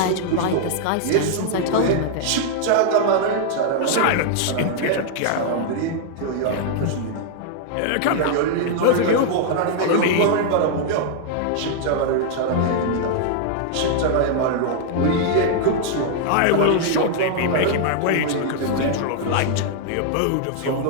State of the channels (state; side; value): different; both; correlation -0.01